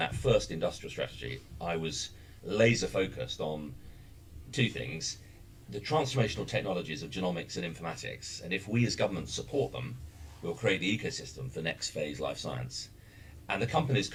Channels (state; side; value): identical; both; correlation 1.00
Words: first industrial strategy, I was laser focused on two things: the transformational technologies of genomics and informatics, and if we as government support them, we'll create the ecosystem for next phase life science. And the companies